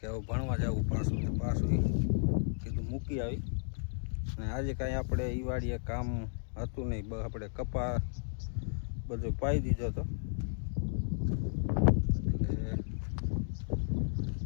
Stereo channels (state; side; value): silent; right; digital silence